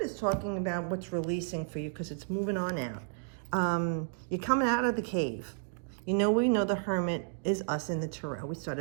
is talking about what's releasing for you because it's moving on out. You're coming out of the cave. You know, we know the Hermit is us in the Tarot. We start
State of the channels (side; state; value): left; silent; digital silence